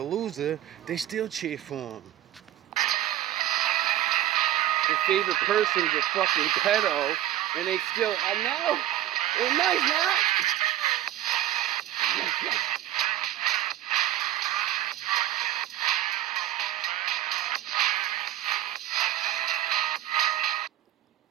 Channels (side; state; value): left; quieter; 12.8 dB